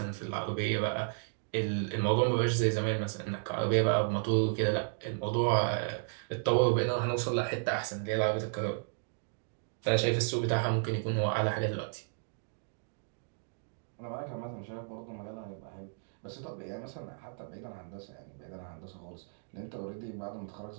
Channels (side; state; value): left; silent; digital silence